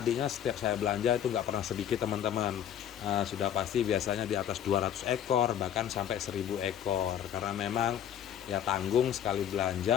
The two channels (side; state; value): right; quieter; 9.8 dB